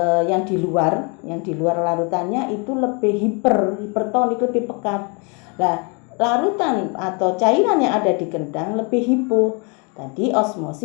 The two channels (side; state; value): right; quieter; 33.8 dB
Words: yang di luar larutannya itu lebih hipertonik, lebih pekat. Nah, larutan atau cairan yang ada di kendang lebih hipo. Tadi